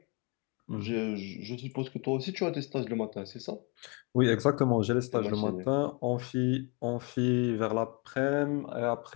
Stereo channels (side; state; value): right; quieter; 31.6 dB